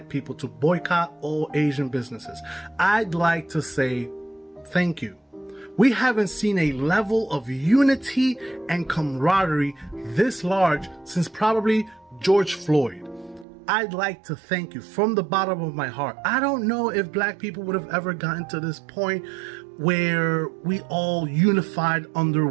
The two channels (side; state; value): left; drops out; at 13.5 s